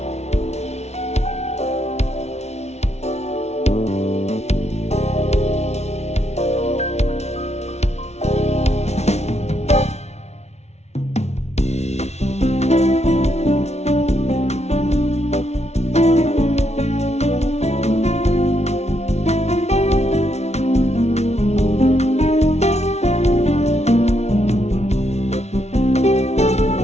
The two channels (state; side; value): late; right; 0.32 ms